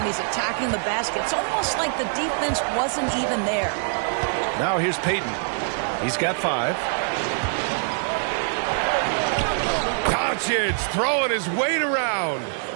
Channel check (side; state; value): left; silent; digital silence